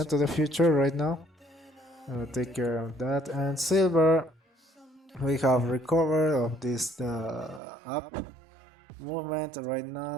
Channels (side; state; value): left; drops out; at 7.6 s